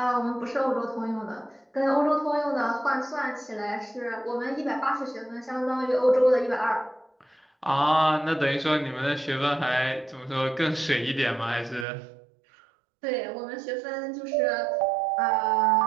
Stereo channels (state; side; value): drops out; left; at 11.9 s